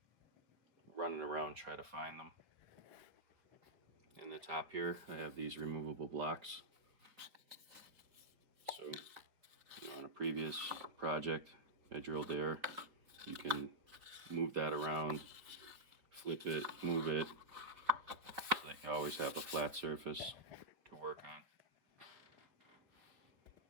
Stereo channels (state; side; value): late; left; 4.2 ms